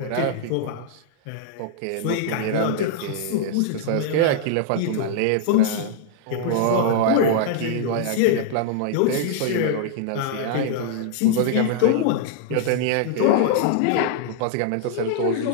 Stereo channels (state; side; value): different; both; correlation -0.01